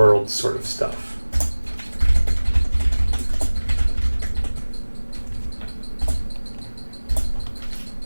sort of stuff.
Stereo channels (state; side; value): inverted; both; correlation -1.00